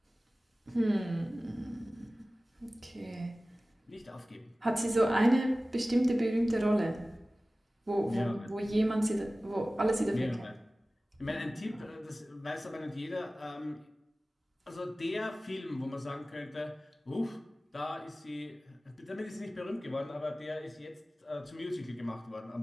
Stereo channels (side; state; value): both; normal; correlation 0.97